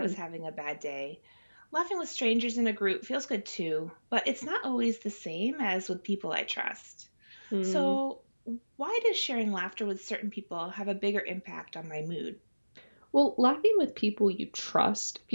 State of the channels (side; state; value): both; inverted; correlation -1.00